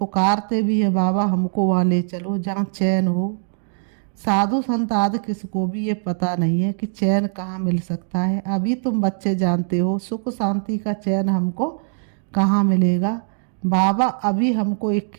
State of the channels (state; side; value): silent; left; digital silence